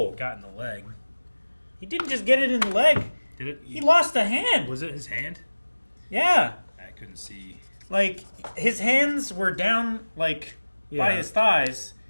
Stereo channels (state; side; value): inverted; both; correlation -1.00